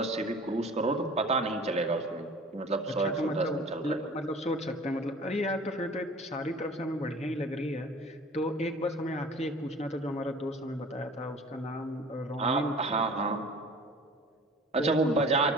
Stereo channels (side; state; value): both; normal; correlation 0.44